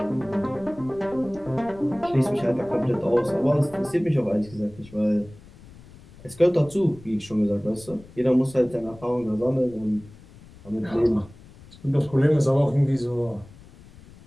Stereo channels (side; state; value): left; noise; rumble, 21 dB below the sound